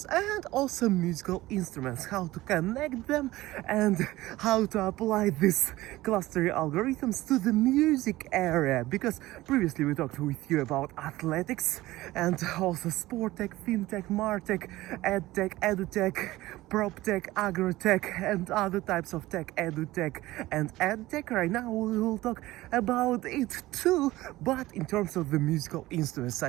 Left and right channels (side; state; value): left; quieter; 17.6 dB